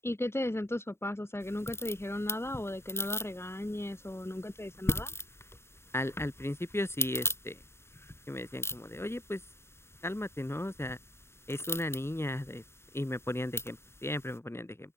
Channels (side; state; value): right; late; 0.12 ms